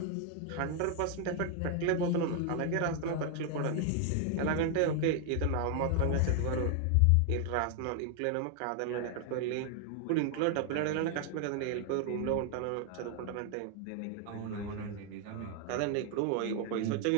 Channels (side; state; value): both; different; correlation 0.00